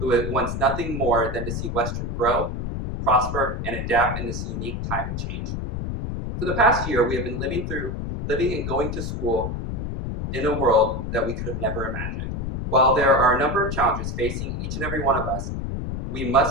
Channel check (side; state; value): left; noise; rumble, 4 dB below the sound